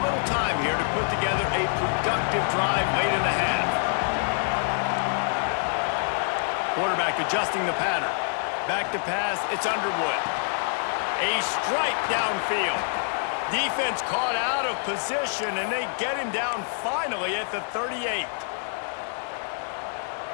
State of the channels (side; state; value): right; silent; 61 dB below the other